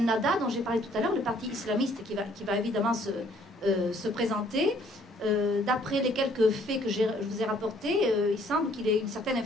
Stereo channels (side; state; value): both; normal; correlation 0.62